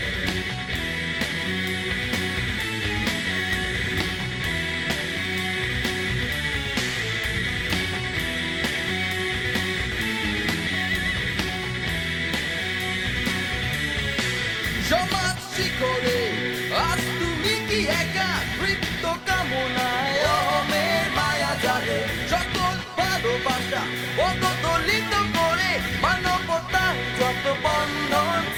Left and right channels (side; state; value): both; identical; correlation 1.00